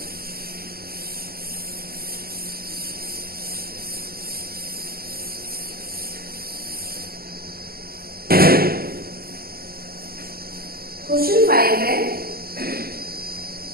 क्वेश्चन 5 है,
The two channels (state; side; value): late; left; 0.44 ms